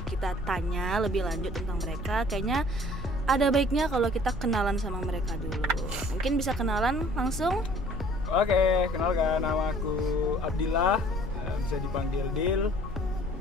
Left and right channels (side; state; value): both; normal; correlation 0.53